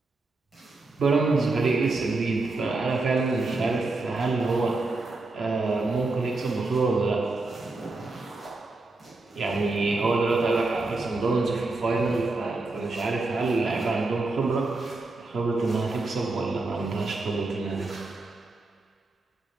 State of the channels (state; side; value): quieter; left; 3.3 dB